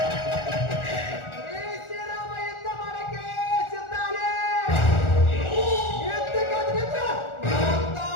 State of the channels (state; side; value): late; right; 1.4 ms